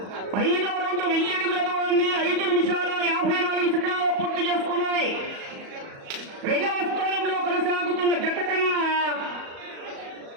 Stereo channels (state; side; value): late; left; 37 ms